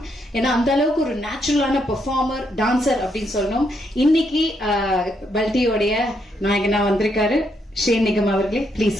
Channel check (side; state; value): both; normal; correlation 0.77